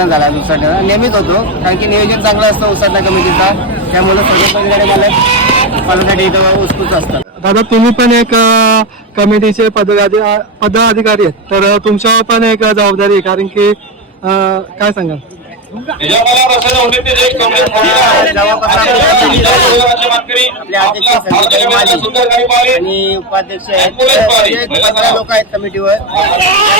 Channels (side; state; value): both; normal; correlation 0.12